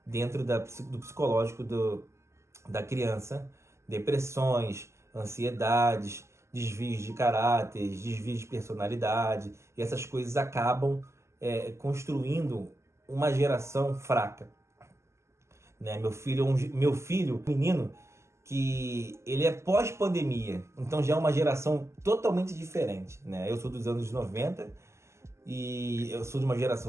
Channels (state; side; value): late; left; 0.13 ms